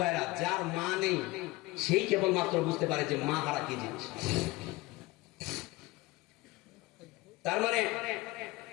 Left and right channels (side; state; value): right; quieter; 20.5 dB